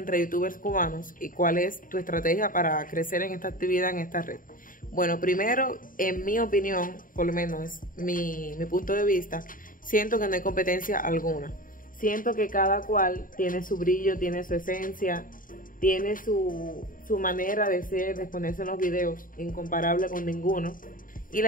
youtubers cubanos y cuál es tu estrategia para crecer en esta actividad, en esta red? Bueno, primero, en mi opinión, por lo menos es mi punto de vista, siento que no hay competencia alguna. Siento que cada cual tiene su brillo, tiene su esencia, tiene su manera de ser, de exponerse en los videos, incomparable con ninguno. Y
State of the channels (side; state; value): right; late; 0.40 ms